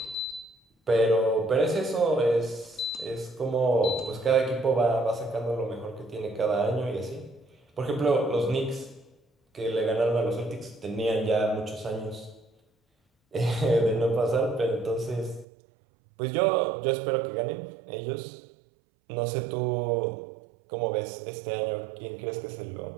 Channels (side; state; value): left; drops out; at 15.5 s